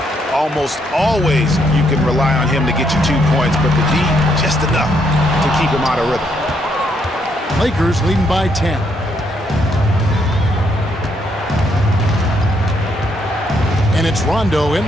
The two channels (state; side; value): normal; both; correlation 0.74